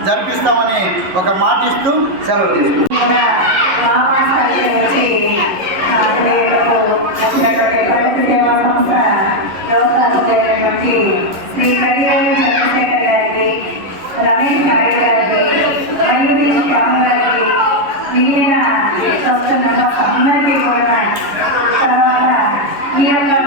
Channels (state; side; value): late; left; 11 ms